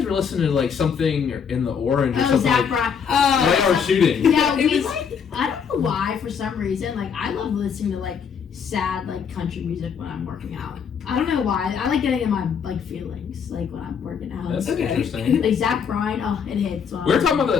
were listening to like something in the Orange or something. Zach Bryan. Right, or shooting. Yeah, I don't know why, for some reason, like I love listening to like sad like country music when I'm working out. I don't know why. I like getting in my like feelings like when I'm working out. That's interesting. Like Zach Bryan, it hits. We were talking about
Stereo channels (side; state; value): right; quieter; 6.9 dB